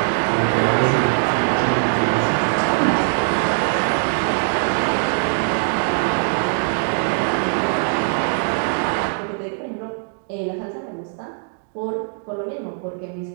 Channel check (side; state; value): left; silent; digital silence